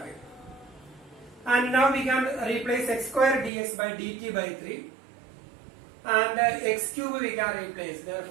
And now we can replace x square dx by dt by 3. And x cube we can replace.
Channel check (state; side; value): drops out; left; at 3.5 s